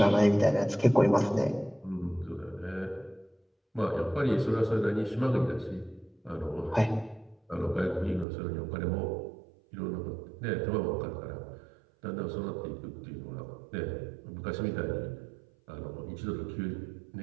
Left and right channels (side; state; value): left; drops out; at 8.2 s